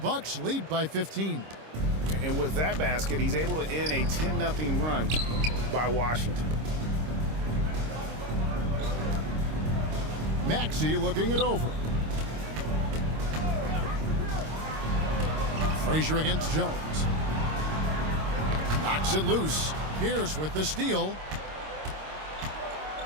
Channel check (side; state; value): left; late; 26 ms